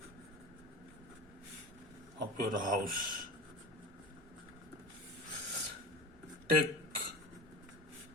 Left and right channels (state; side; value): normal; both; correlation 0.34